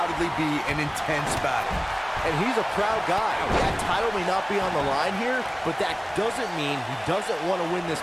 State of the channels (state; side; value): identical; both; correlation 1.00